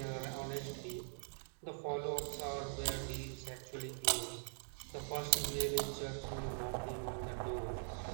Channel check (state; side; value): silent; left; digital silence